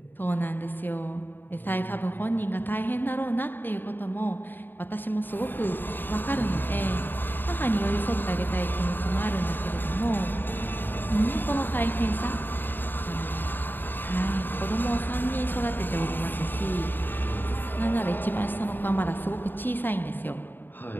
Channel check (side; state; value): right; late; 0.093 ms